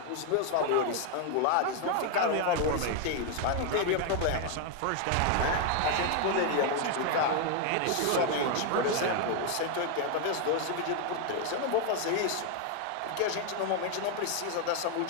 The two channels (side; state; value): both; different; correlation 0.01